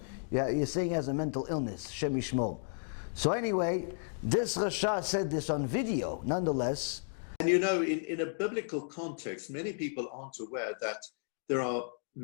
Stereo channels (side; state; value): right; silent; digital silence